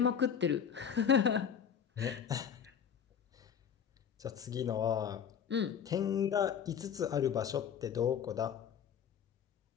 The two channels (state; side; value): quieter; right; 7.9 dB